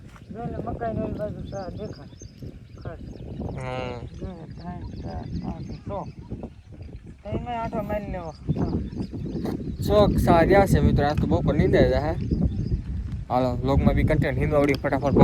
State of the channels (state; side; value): identical; both; correlation 1.00